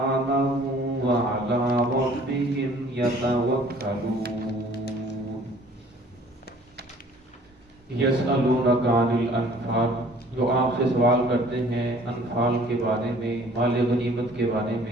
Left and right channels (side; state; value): both; normal; correlation 0.53